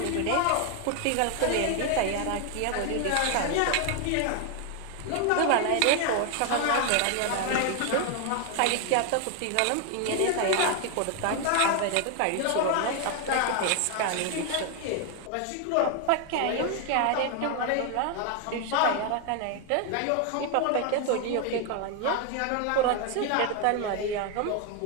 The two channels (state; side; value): different; both; correlation 0.01